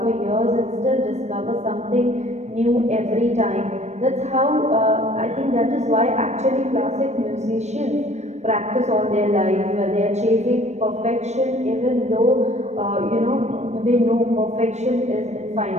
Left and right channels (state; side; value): late; left; 0.33 ms